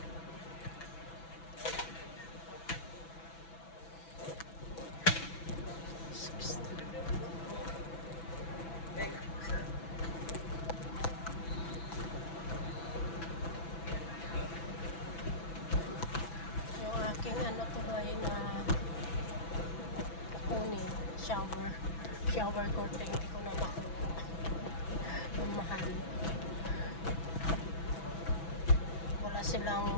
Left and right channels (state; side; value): late; right; 6.0 ms